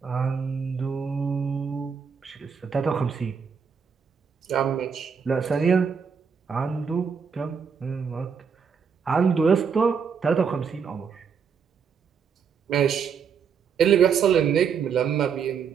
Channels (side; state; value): left; quieter; 6.5 dB